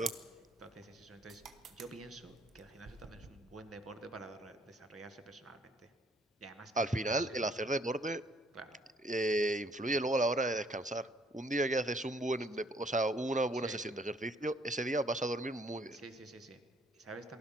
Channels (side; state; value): both; normal; correlation 0.64